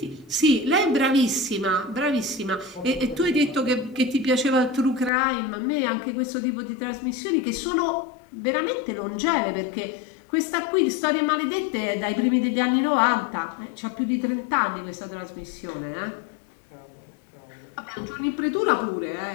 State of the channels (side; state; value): right; drops out; at 5.1 s